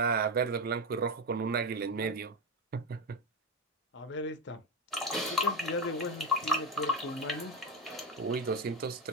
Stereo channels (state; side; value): normal; both; correlation 0.11